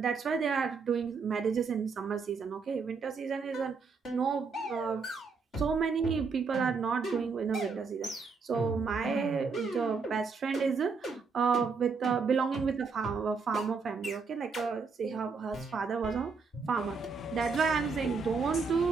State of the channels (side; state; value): left; quieter; 4.9 dB